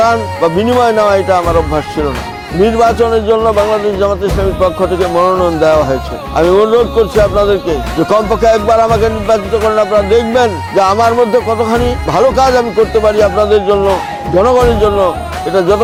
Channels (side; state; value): both; identical; correlation 1.00